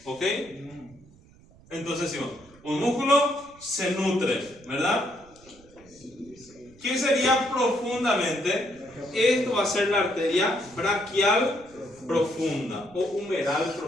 ¿Ok? Entonces, sí, un músculo se nutre, ¿verdad? ¿Qué sería profundamente? Esto va a ser la arteria braquial profunda o humeral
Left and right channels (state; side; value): noise; right; rumble, 26 dB below the sound